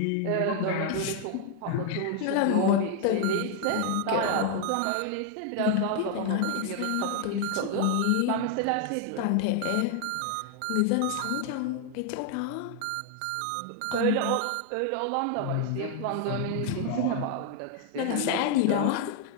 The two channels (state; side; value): different; both; correlation 0.00